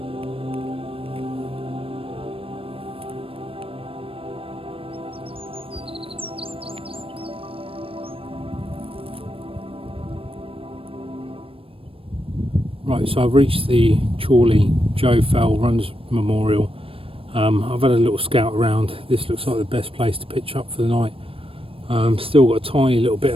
Right, so I've reached the Chorley Joe Fell Runners Memorial. I've had a little scout around. This looks like the best place to pitch up for the night. Still got a tiny little bit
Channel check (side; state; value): left; late; 0.27 ms